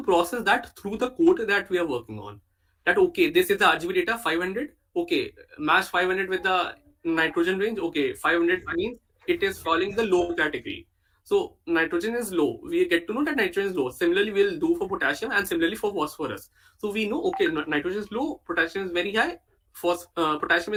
process that through the code that we are working on. That okay, this is the RGB data 500. Okay, match 500 with the nitrogen range. Okay, 500 means it is falling the low category. So nitrogen is low. We get to know that nitrogen is low. Similarly, we'll do for potassium and similarly for phosphorus. So we know okay, nitrogen is low, potassium is very high, potassium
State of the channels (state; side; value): identical; both; correlation 1.00